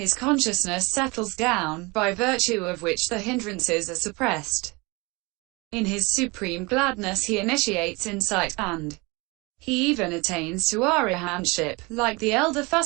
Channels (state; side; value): quieter; left; 25.8 dB